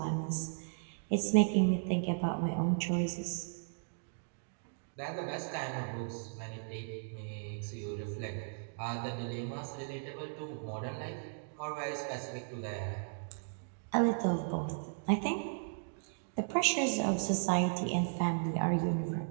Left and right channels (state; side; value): silent; left; digital silence